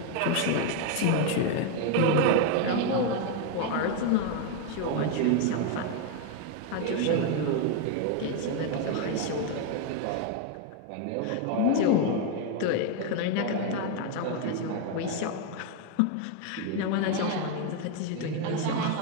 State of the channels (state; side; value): different; both; correlation 0.01